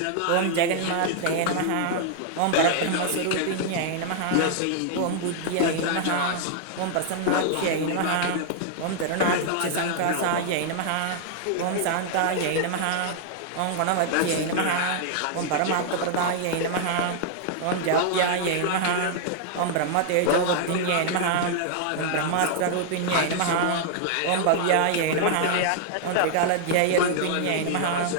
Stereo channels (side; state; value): both; different; correlation -0.01